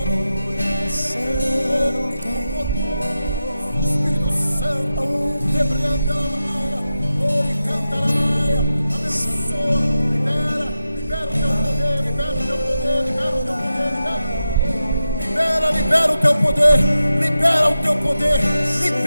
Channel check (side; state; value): both; inverted; correlation -0.91